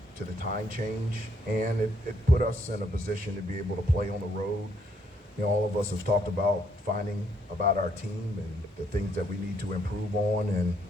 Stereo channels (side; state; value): both; normal; correlation 0.71